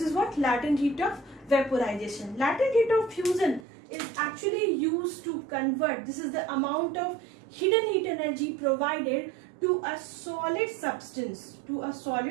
what? Latent heat of vaporization. Latent heat of fusion is actually used to convert, this is the amount of hidden heat energy provided to a solid substance, to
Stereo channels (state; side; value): drops out; left; at 3.7 s